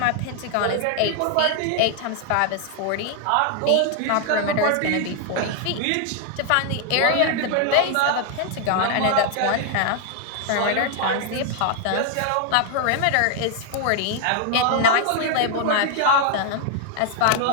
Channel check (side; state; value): both; different; correlation 0.00